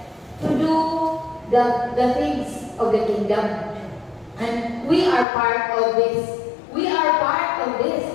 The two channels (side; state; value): right; drops out; at 5.2 s